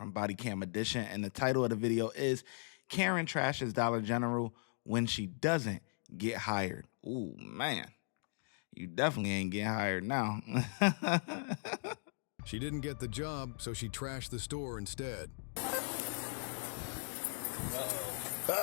Body Cam Edition, and the title of the video is Karen trashes Dollar General when she doesn't get hired. Ooh, man, you definitely ain't getting hired now. She didn't get the job, so she trashed the store instead.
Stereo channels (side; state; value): right; silent; digital silence